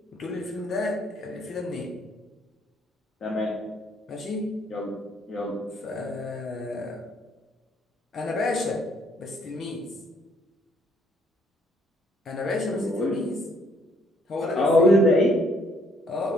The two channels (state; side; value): normal; both; correlation 0.66